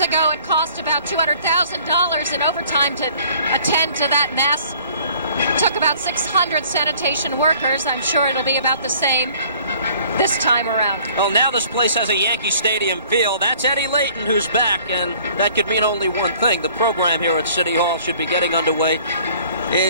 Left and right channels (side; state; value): both; inverted; correlation -0.55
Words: ago, it cost about $200,000 in overtime to attend to that mess. Took about 600 sanitation workers. I'm sure it'll be about the same this time around. Well, now this place has a Yankee Stadium feel. That's Eddie Layton who's back, and that could mean only one thing. The program here at City Hall should be getting underway